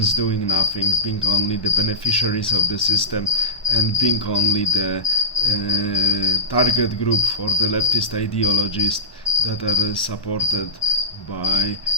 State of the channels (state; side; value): late; right; 1.2 ms